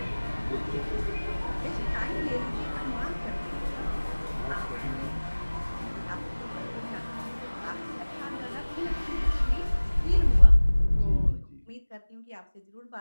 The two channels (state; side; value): inverted; both; correlation -1.00